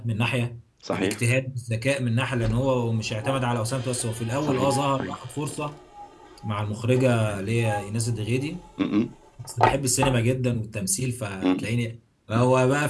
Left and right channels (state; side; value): identical; both; correlation 1.00